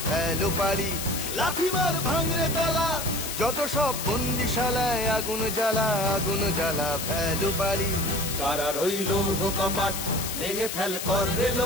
ফেলো পারি। লাথি মার ভাঙরে তালা যত সব বন্দিশালায়, আগুন জ্বালা আগুন জ্বালা ফেলো পারি। কারার ওই লৌহ কপাট ভেঙে ফেল কর রে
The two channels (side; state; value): left; noise; hiss, 5 dB below the sound